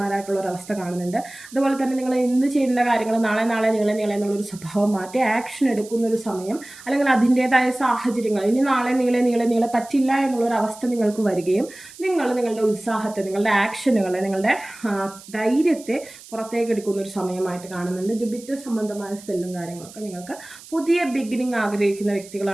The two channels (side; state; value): right; noise; hiss, 19 dB below the sound